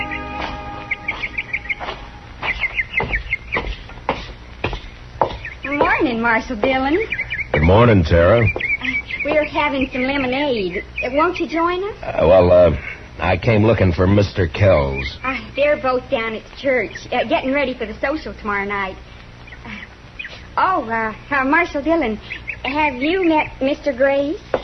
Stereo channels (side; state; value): both; identical; correlation 1.00